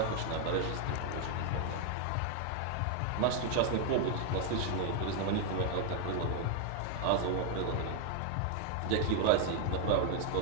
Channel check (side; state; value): both; different; correlation 0.00